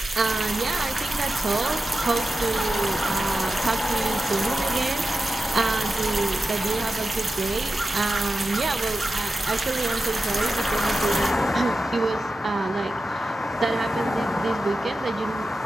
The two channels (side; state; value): both; normal; correlation 0.92